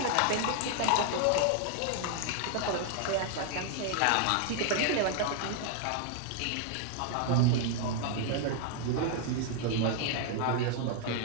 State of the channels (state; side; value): different; both; correlation 0.00